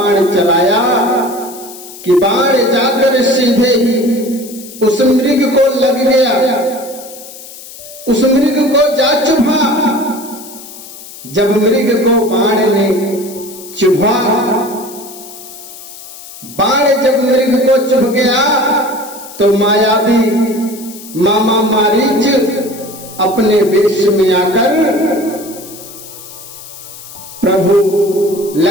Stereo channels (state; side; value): noise; left; hiss, 16 dB below the sound